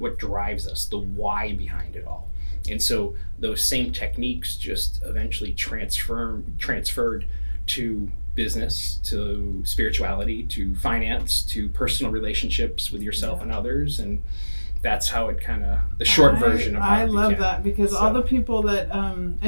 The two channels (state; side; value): inverted; both; correlation -1.00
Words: what drives us, the why behind it all. And so those same techniques just eventually transferred to business, to spirituality, to finance, to personal relationships with yourself and others. And that's how it the short version of how I love that, because all the people that